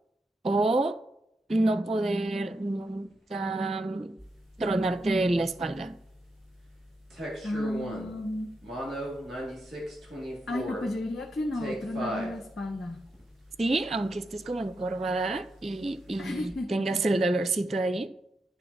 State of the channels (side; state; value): both; normal; correlation 0.85